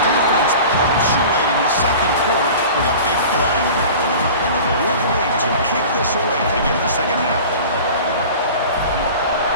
defense punctuating the second quarter with a big play. The Wolverines will kick this away to begin the second half.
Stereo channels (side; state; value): both; inverted; correlation -0.39